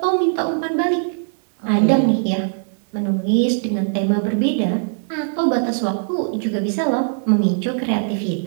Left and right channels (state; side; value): silent; left; digital silence